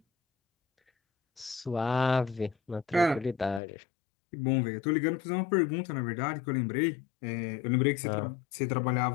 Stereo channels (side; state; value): right; drops out; at 3.6 s